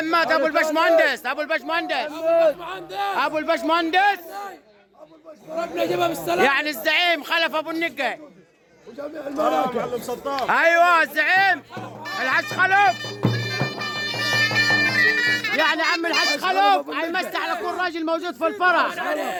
ابو البشمهندس ابو البشمهندس ربنا يجيبها بالسلامه. يعني الزعيم خلف ابو النقي. ايوه الزعيم الحج خلف، يعني عم الحج خلف هيمسي على كل راجل موجود في الفرح.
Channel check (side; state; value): both; identical; correlation 1.00